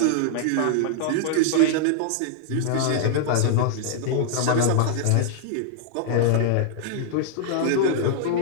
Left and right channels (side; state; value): both; different; correlation -0.01